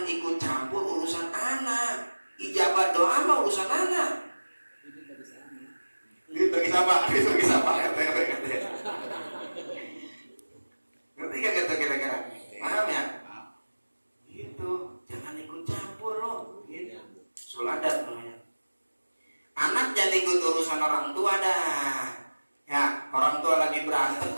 ikut campur urusan anak. Ijabah doa mah urusan anak. Gitu bagi siapa? Ngerti gak gitu kira-kira? Paham ya? Gitu, jangan ikut campur lo. Gitu. Su'ul adab namanya. Anak jangan ikut urusan orang tua dah. Ya, orang tua lagi berantem,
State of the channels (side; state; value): both; inverted; correlation -1.00